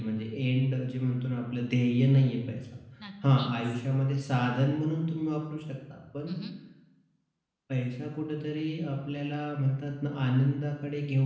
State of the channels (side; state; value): both; identical; correlation 1.00